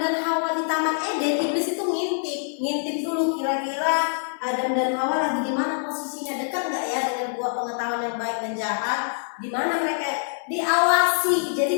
dan Hawa di Taman Eden, iblis itu ngintip dulu kira-kira Adam dan Hawa lagi di mana posisinya, dekat nggak ya dengan buah pengetahuan yang baik dan jahat, di mana mereka diawasi.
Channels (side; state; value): right; silent; digital silence